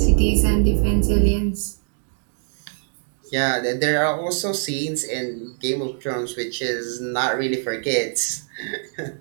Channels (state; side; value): silent; left; digital silence